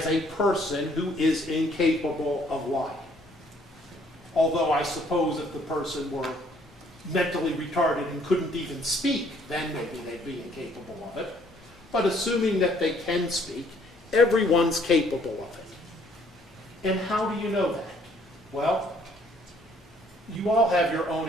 a person who is incapable of lying. Although I suppose if the person were mentally retarded and couldn't even speak, then maybe they'd be incapable of it. But assuming that they can speak, everyone's capable of it. And how do you know that? Well, you all have your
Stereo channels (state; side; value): normal; both; correlation 0.63